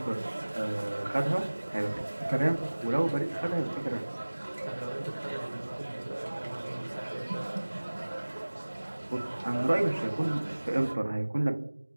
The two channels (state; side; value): inverted; both; correlation -1.00